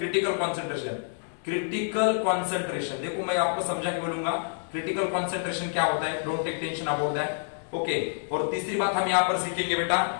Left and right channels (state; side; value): silent; right; digital silence